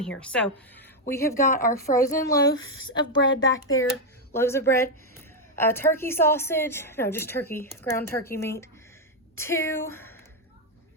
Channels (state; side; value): normal; both; correlation 0.03